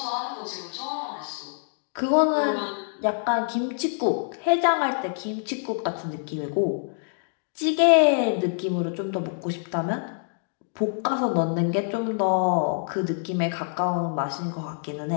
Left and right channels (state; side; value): silent; right; digital silence